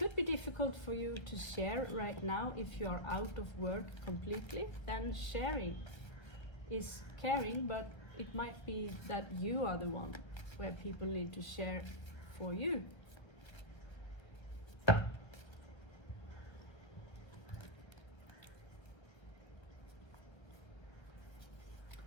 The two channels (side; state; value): right; late; 1.3 ms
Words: be difficult for you to share right now if you are out of work completely. Then sharing is caring, but it might be that you are the one where people need to share for you.